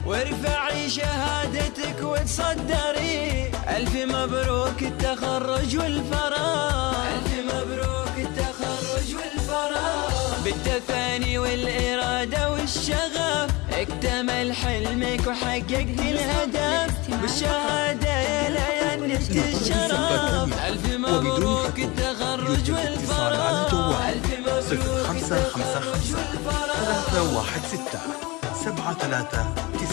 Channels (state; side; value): quieter; right; 23.9 dB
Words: وارفعي شهادتك وتصدري. ألف مبروك التخرج والفراغ، ألف مبروك التخرج والفراغ. بالتفاني والإرادة والشغف اكتمل حلمك وحققت الهدف، بالشهادة يا ليان نلت الشرف. ألف مبروك التخرج والفراغ، ألف مبروك التخرج والفراغ. 316 739.